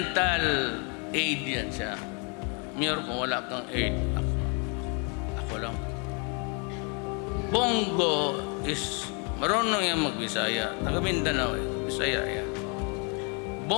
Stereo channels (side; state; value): right; quieter; 35.3 dB